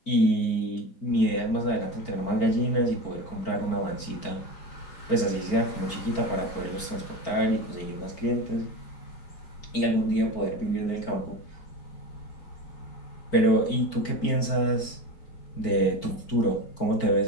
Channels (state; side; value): late; right; 4.5 ms